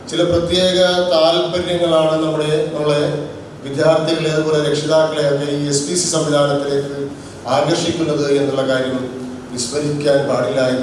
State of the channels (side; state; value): both; identical; correlation 1.00